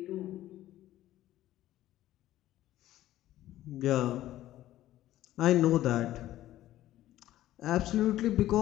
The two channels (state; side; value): quieter; right; 14.2 dB